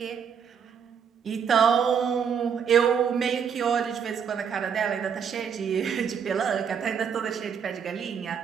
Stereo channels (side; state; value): left; quieter; 7.3 dB